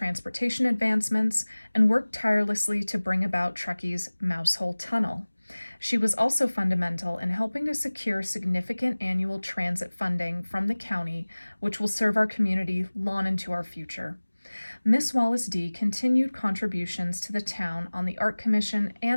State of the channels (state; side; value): inverted; both; correlation -1.00